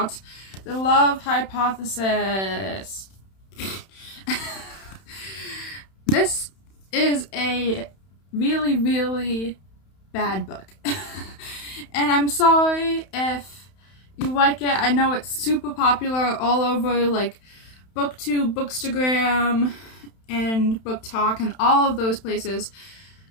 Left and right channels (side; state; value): right; late; 31 ms